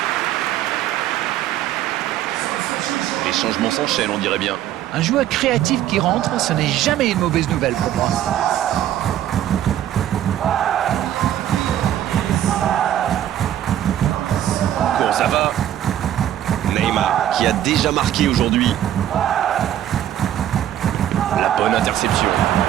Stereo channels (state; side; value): quieter; left; 11.7 dB